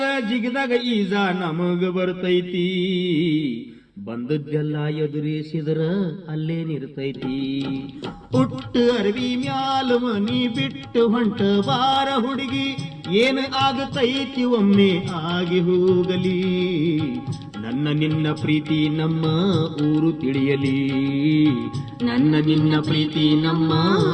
ಜಿಗದಾಗ ಈಜ ನಮಗ ಬರ್ತೈತಿ, ಬಂದದ್ದೆಲ್ಲ ಎದುರಿಸಿದ್ರ ಅಲ್ಲೇ ನಿರ್ತೈತಿ. ಹುಟ್ಟು ಅರವಿ ಮ್ಯಾಲ ಮನಿ ಬಿಟ್ಟು ಹೊಂಟ ಬಾರ ಹುಡುಗಿ, ಏನು ಆಗತೈತಿ ಒಮ್ಮೆ ಆಗಿ ಹೋಗಲಿ. ನನ್ನ ನಿನ್ನ ಪ್ರೀತಿ ನಮ್ಮ ಊರು ತಿಳಿಯಲಿ, ನನ್ನ ನಿನ್ನ ಪ್ರೀತಿ ನಮ್ಮ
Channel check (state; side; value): identical; both; correlation 1.00